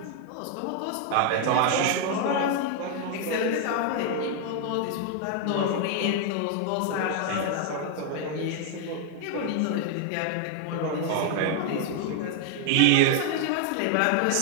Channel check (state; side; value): different; both; correlation 0.00